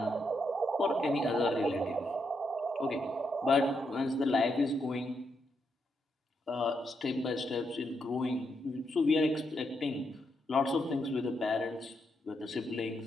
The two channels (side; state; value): both; normal; correlation 0.81